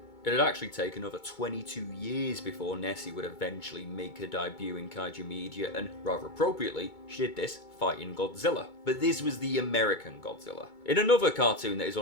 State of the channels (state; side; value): late; right; 2.2 ms